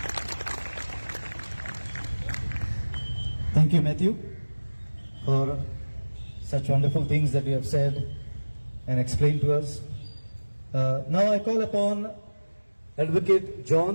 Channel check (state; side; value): inverted; both; correlation -1.00